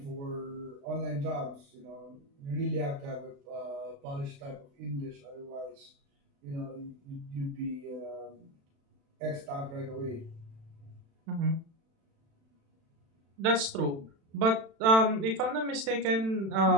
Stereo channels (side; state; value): left; late; 36 ms